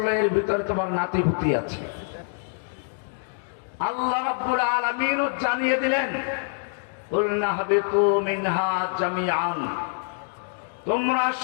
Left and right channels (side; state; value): right; silent; 61 dB below the other